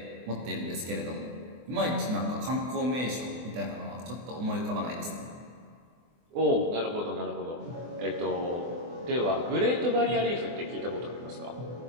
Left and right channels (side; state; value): left; late; 24 ms